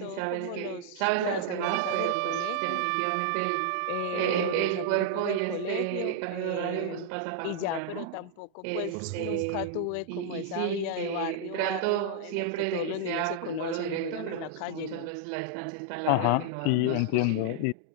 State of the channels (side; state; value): both; different; correlation -0.01